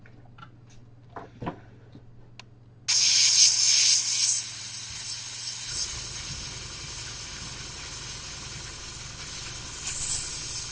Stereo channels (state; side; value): identical; both; correlation 1.00